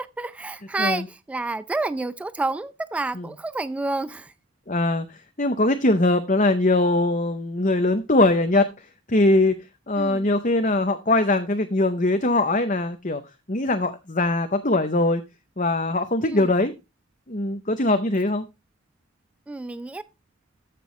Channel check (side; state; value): both; normal; correlation 0.36